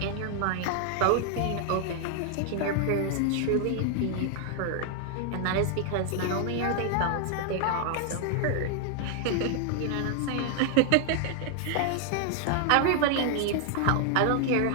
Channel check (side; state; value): both; different; correlation 0.00